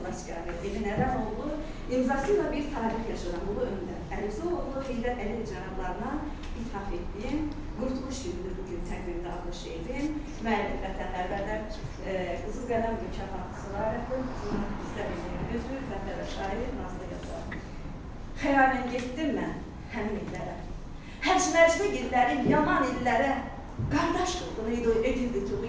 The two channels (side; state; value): both; identical; correlation 1.00